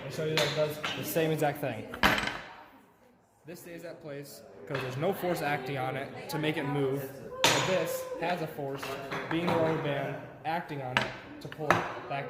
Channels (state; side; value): identical; both; correlation 1.00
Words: and show you that it does the same exact thing. This stays at place because there's no force acting on it to make it move. And this has a force, being the rubber band, acting on it to pull it back